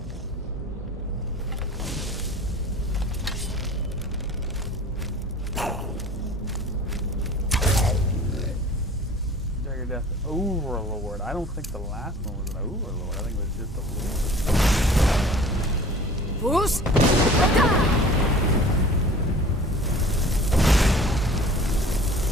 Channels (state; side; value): normal; both; correlation 0.45